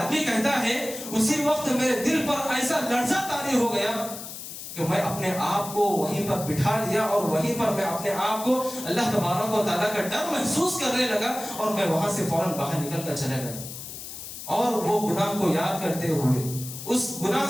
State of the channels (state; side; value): noise; left; hiss, 10 dB below the sound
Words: کہتا ہے اسی وقت میرے دل پر ایسا لرزہ طاری ہو گیا کہ میں اپنے آپ کو وہیں پر بٹھا لیا اور وہیں پر میں اپنے آپ کو اللہ تبارک و تعالیٰ کا ڈر محسوس کرنے لگا اور میں وہاں سے فوراً باہر نکل کر چلا گیا. اور وہ گناہ کو یاد کرتے ہوئے, اس گناہ